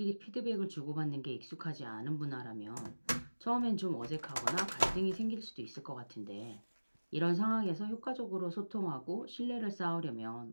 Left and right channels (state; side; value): inverted; both; correlation -1.00